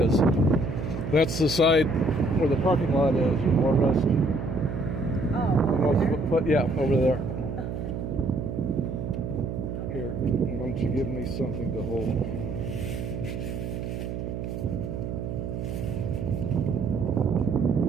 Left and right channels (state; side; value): noise; right; hum, 5 dB below the sound